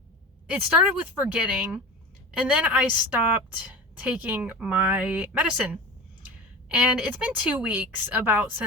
started with forgetting, and then I stopped taking my medicine. And it's been 2 weeks about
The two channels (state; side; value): normal; both; correlation 0.32